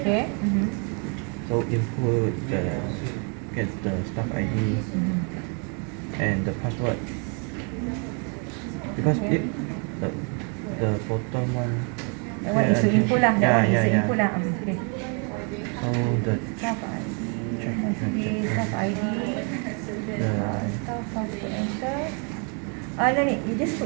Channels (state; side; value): quieter; left; 37.8 dB